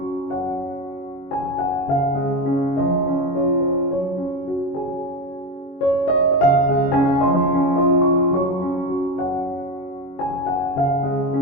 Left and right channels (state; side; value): late; right; 22 ms